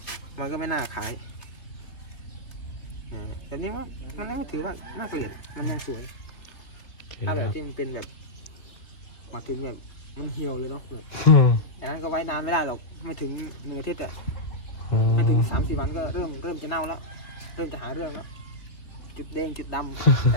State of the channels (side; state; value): right; late; 3.0 ms